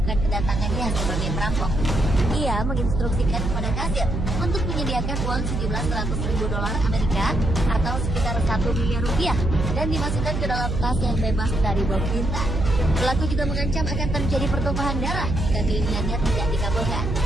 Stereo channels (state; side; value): noise; right; hum, 2 dB below the sound